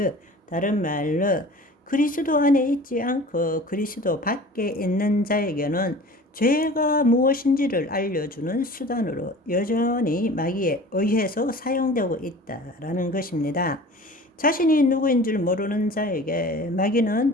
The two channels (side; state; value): both; normal; correlation 0.42